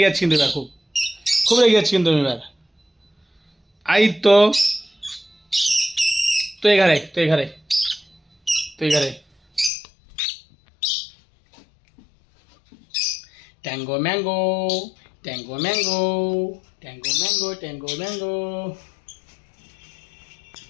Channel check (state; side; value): drops out; right; at 9.7 s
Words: গিয়েছি, কিন্তু এবার খুব খুব রেগে যাচ্ছি কিন্তু আমি এবার। আই তো, তুই এখানে, তুই এখানে, তুই এখানে। Tango mango, tango mango, tango mango, tango mango.